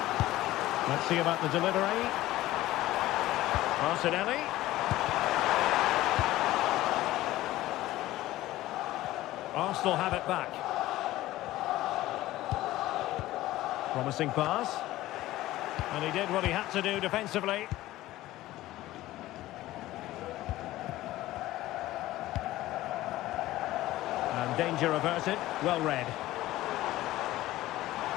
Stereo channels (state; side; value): quieter; right; 16.1 dB